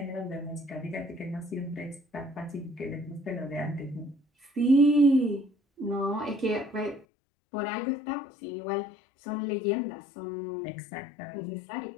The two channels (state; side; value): drops out; right; at 7.1 s